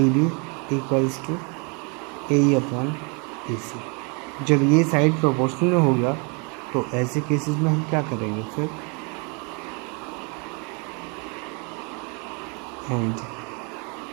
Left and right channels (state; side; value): quieter; left; 33.8 dB